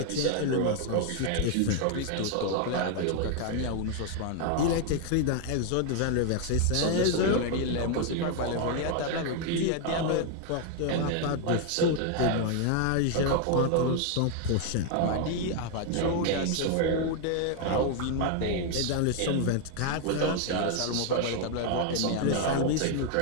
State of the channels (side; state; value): both; different; correlation 0.01